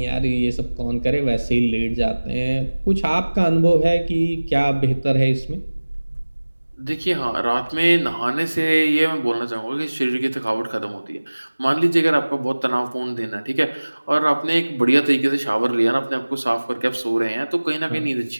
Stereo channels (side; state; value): both; inverted; correlation -1.00